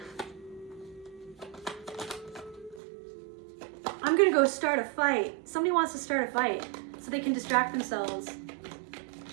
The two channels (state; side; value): drops out; left; at 2.8 s